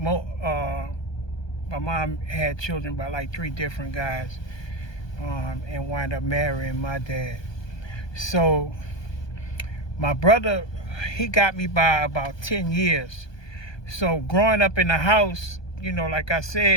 mom had children by like 3 different guys, and wound up marrying my dad. So my brother, he got me by about 10 years. So growing up in the house, you know, like I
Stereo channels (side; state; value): right; late; 1.2 ms